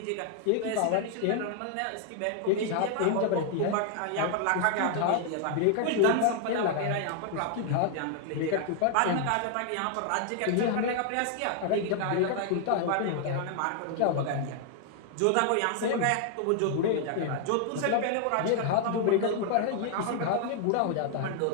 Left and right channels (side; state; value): both; different; correlation 0.00